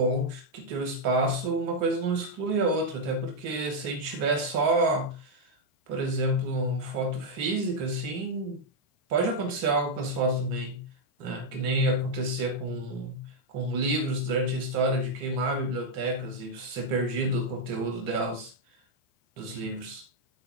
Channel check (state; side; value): late; left; 3.4 ms